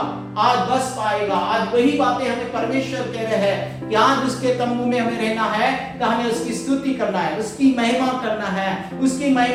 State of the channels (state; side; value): identical; both; correlation 1.00